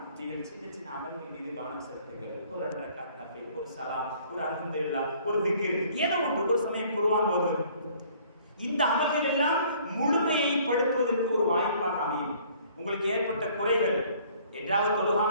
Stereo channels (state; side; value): inverted; both; correlation -0.57